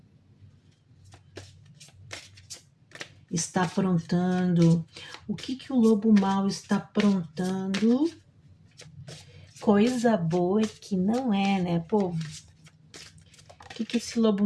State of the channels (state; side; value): identical; both; correlation 1.00